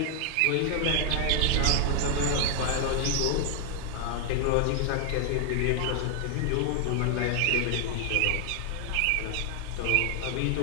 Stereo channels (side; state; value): both; different; correlation 0.00